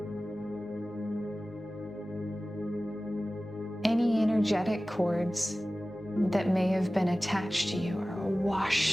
Any energetic cords that may have been attached to you are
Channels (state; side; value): normal; both; correlation 0.97